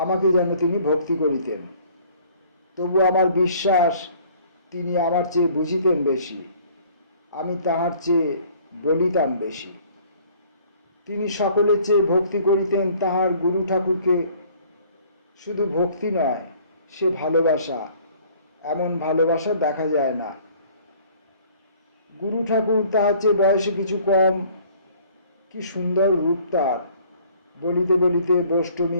যেন তিনি ভক্তি করিতেন। তবু আমার বিশ্বাস তিনি আমার চেয়ে বুঝিতেন বেশি, আমি তাহার চেয়ে বলিতাম বেশি। তিনি সকলের চেয়ে ভক্তি করিতেন তাহার গুরু ঠাকুরকে। শুধু ভক্তি নয়, সে ভালোবাসা, এমন ভালোবাসা দেখা যায় না। গুরু ঠাকুর তাহার চেয়ে বয়সে কিছু কম, কি সুন্দর রূপ তার। বলিতে বলিতে বষ্টমী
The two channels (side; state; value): both; inverted; correlation -0.56